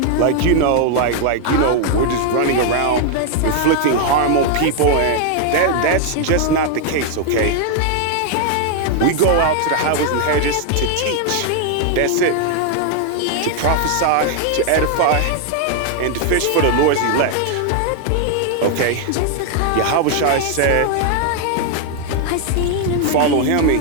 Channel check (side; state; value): both; different; correlation 0.00